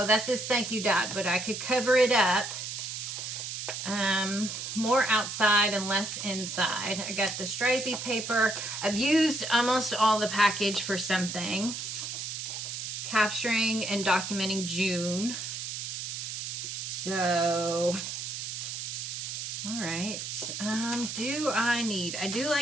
that says thank you, Dad, but I could cover it up. More outside and less inside. I got the stripey paper. I've used almost all the package for something. Capturing and documenting June. So, all right. I do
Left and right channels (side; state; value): right; noise; hiss, 5 dB below the sound